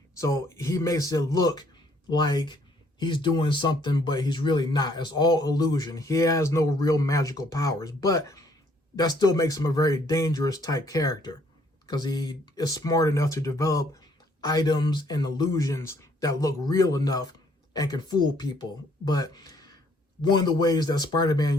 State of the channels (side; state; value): both; normal; correlation 0.64